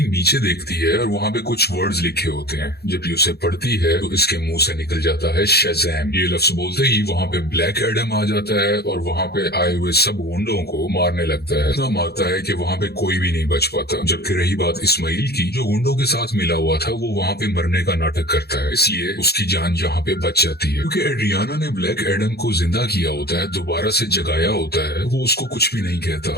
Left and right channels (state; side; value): late; right; 0.47 ms